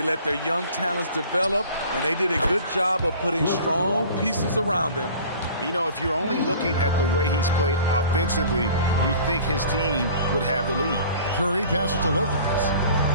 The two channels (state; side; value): inverted; both; correlation -0.45